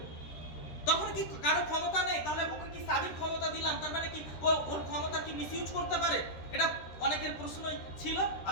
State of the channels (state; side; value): late; right; 13 ms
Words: তখন কি কারো ক্ষমতা নেই? তাহলে ওকে কি সাবিক ক্ষমতা দিলাম, তার মানে কি ওর ক্ষমতা কি মিসইউজ করতে পারে? এটা অনেকের প্রশ্ন ছিল,